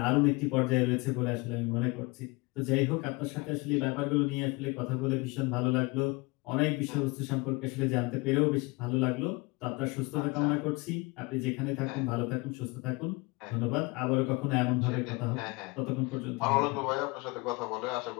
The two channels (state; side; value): quieter; right; 26.1 dB